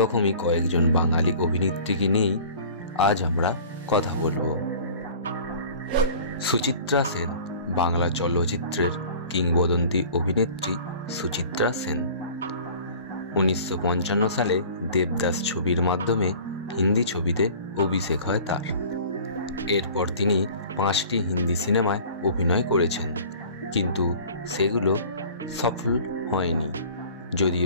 কয়েকজন বাঙালি অভিনেত্রীকে নিয়েই আজ আমরা কথা বলবো। সুচিত্রা সেন, বাংলা চলচ্চিত্রের কিংবদন্তি অভিনেত্রী সুচিত্রা সেন। 1955 সালে দেবদাস ছবির মাধ্যমে হিন্দি ছবিতে অভিষেক হয় তার। এরপর তিনি 5টি হিন্দি সিনেমায় অভিনয় করেছেন, কিন্তু সেগুলো সফল হয়নি।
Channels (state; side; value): inverted; both; correlation -0.45